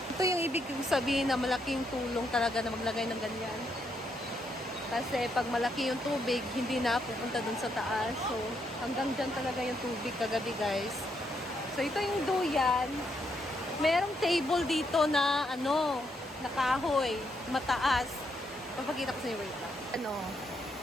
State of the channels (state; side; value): normal; both; correlation 0.77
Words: Ito yung ibig sabihin na malaking tulong talaga na maglagay ng ganyan. Kasi pag malaki yung tubig, hindi na pupunta dun sa taas. So, hanggang dyan talaga yung tubig kagabi, guys. So, ito yung duyan. Merong table dito na, na kahoy. Mataas. Papakita ko sa inyo, wait lang.